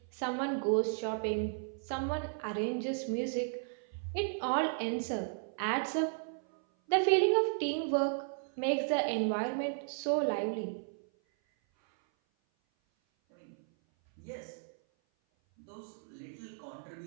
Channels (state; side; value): silent; left; 55 dB below the other